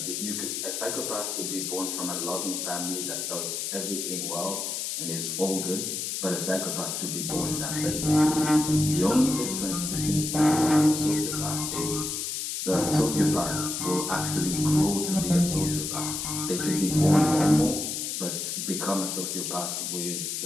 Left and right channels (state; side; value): noise; left; hiss, 3 dB below the sound